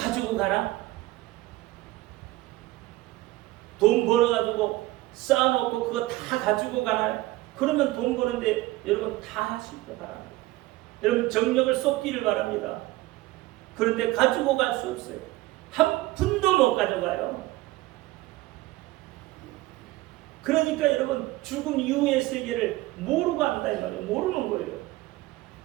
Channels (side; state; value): left; quieter; 18.5 dB